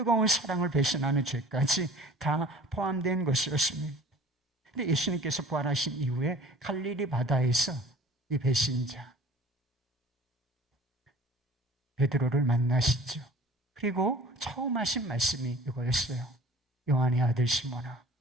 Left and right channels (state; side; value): normal; both; correlation 0.47